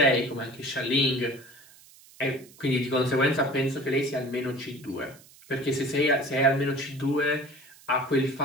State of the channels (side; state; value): right; noise; hiss, 24 dB below the sound